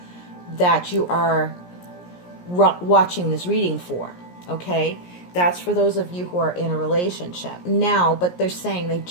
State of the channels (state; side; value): late; right; 17 ms